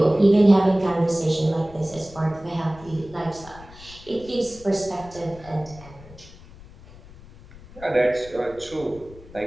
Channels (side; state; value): left; noise; rumble, 20 dB below the sound